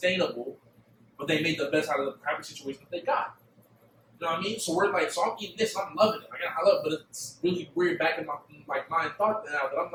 but they made the best out of the crappy situation that they got. You know what I mean? So we're like, so I'm eating this, I'm loving it. Like, I love it, but it's really weird back in my mind thought now that I'm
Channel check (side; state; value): both; identical; correlation 1.00